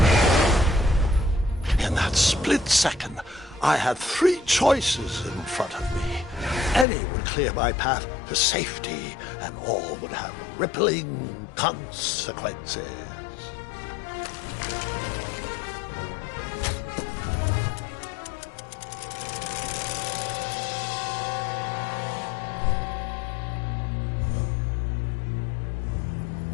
In that split second, I had three choices in front of me. Any would clear my path to safety, and all would have rippling consequences.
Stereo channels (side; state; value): right; drops out; at 6.9 s